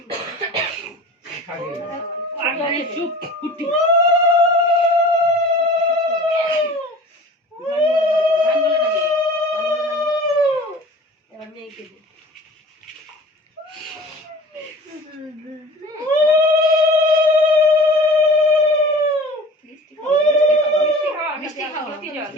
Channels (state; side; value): normal; both; correlation 0.41